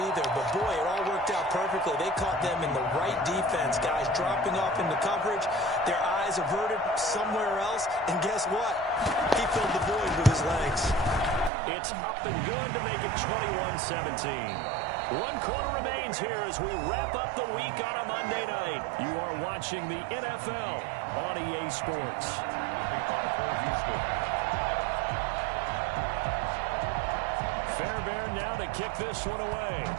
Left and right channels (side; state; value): left; drops out; at 11.5 s